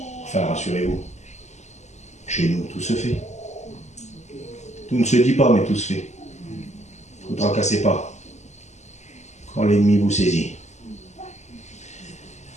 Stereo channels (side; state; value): right; late; 0.33 ms